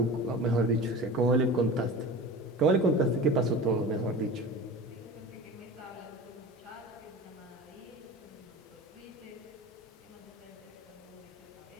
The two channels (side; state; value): both; normal; correlation 0.34